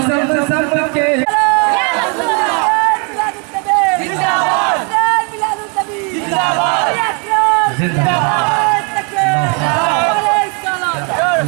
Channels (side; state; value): left; quieter; 35.9 dB